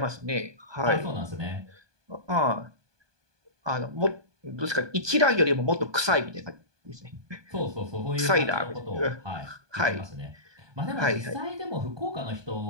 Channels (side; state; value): left; late; 1.2 ms